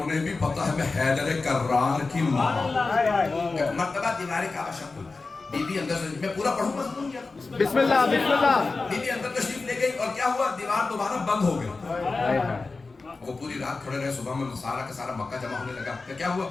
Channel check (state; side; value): quieter; right; 3.9 dB